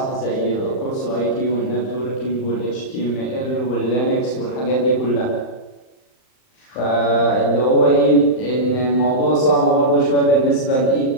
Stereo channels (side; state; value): right; late; 39 ms